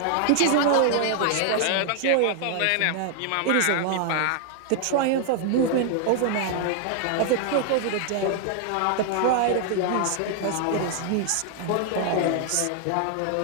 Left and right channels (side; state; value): both; different; correlation 0.00